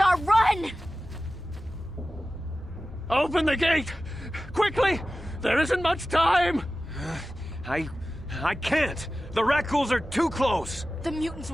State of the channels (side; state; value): both; normal; correlation 0.95